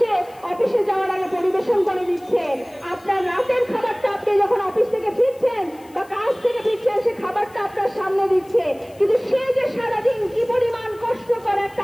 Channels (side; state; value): left; noise; hiss, 27 dB below the sound